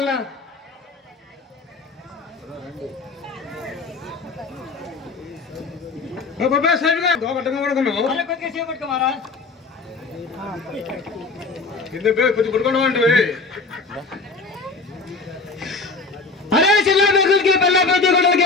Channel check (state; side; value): quieter; right; 4.0 dB